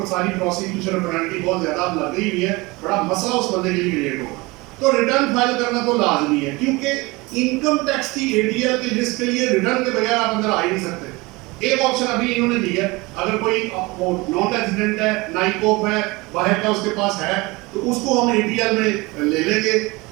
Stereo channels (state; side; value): quieter; left; 23.5 dB